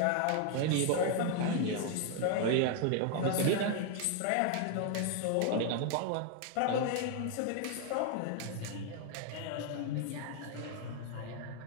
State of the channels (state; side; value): different; both; correlation 0.00